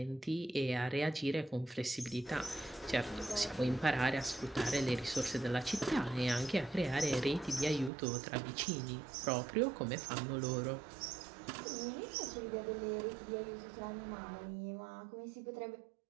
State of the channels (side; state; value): left; drops out; at 7.9 s